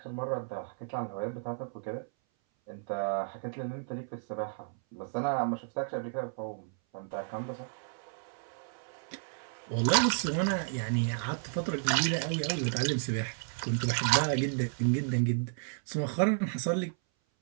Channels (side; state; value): left; silent; 56 dB below the other